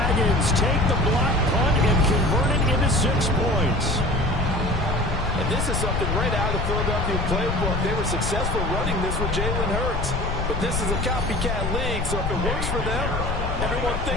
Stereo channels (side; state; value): left; noise; rumble, 3 dB below the sound